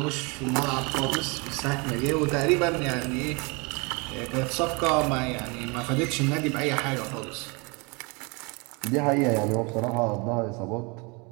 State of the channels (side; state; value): left; quieter; 29.8 dB